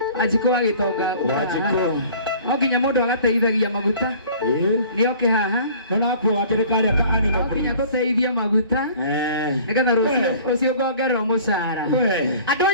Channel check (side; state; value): both; inverted; correlation -0.48